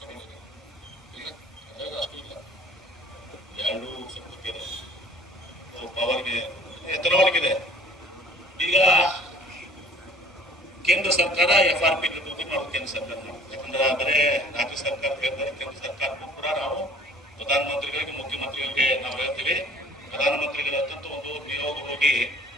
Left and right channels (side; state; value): both; normal; correlation 0.52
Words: ಅಷ್ಟು ಇಲ್ಲ, 2 ಸ್ವಲ್ಪ ಇದೆ ಪವರ್ಗೆ, ಎಥನಾಲ್ಗಿದೆ. ಈಗ ಕೇಂದ್ರ ಸರ್ಕಾರ FRP ನಿರ್ವಹಣೆ ಮಾಡೋದು ಕೇಂದ್ರ ಸರ್ಕಾರ ಮಾಡುತ್ತೆ. ಯಾಕಂದ್ರೆ ಬರೇ ರಾಜ್ಯ ಸರ್ಕಾರ ಹೇಳ್ತಾರೆ, ಕೇಂದ್ರ ಸರ್ಕಾರಕ್ಕೂ ಕೂಡ ನಾವು ಪ್ರಧಾನಮಂತ್ರಿಗಳಿಗೆ, ಮುಖ್ಯಮಂತ್ರಿಗಳಿಗೆ ನಾವು ಹೇಳ್ತೀವಿ. ಪ್ರಧಾನಮಂತ್ರಿಗಳ ಹತ್ತಂತ ಒಂದು ನಿಯೋಗ ಹೋಗಿ